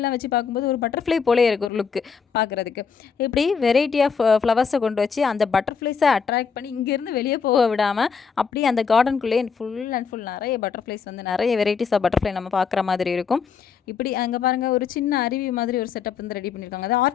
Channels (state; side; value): quieter; right; 6.0 dB